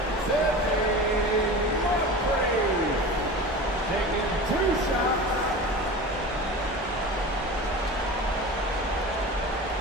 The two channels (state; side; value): normal; both; correlation 0.33